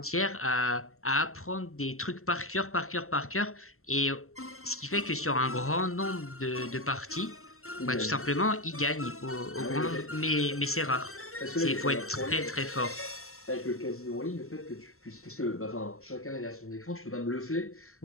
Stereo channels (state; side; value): late; right; 0.63 ms